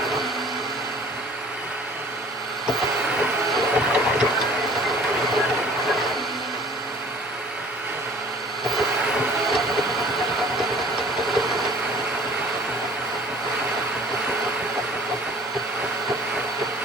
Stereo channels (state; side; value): normal; both; correlation 0.50